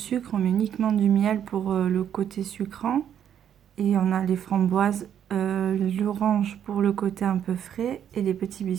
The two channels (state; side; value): quieter; left; 9.4 dB